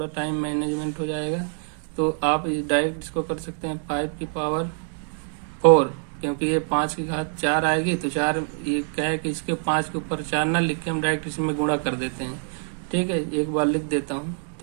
टाइम मैनेजमेंट हो जाएगा। तो आप डायरेक्ट इसको कर सकते हैं 5 की पावर 4, क्योंकि ये 5 की घात 4 आएगी, तो 4 ये क्या है कि इसके 5 के ऊपर 4 ना लिख के हम डायरेक्ट इसमें गुणा कर देते हैं। ठीक है, एक बार लिख देता हूँ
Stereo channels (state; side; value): silent; left; 56 dB below the other